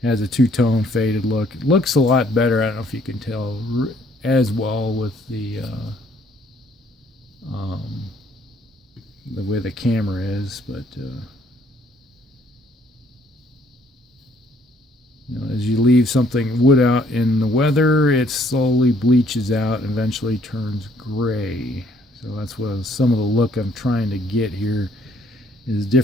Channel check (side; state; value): both; normal; correlation 0.64